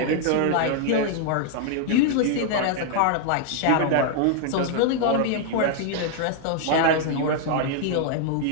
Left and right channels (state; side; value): different; both; correlation 0.00